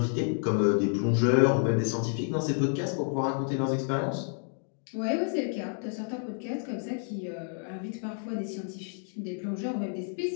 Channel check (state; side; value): silent; right; 58 dB below the other